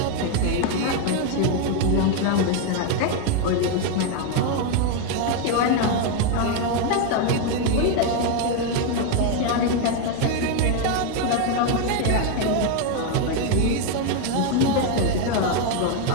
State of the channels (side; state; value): both; different; correlation 0.01